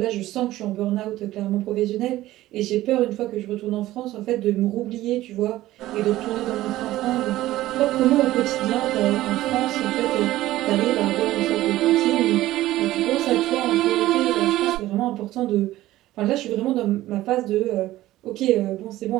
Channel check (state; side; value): quieter; left; 15.7 dB